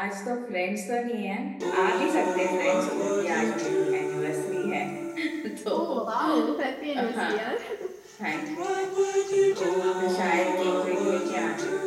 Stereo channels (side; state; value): both; identical; correlation 1.00